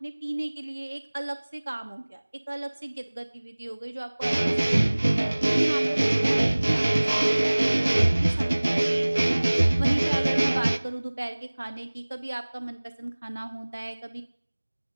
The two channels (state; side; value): inverted; both; correlation -1.00